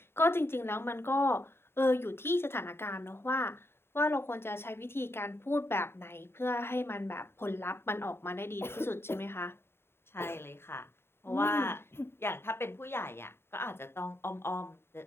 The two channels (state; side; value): late; right; 0.11 ms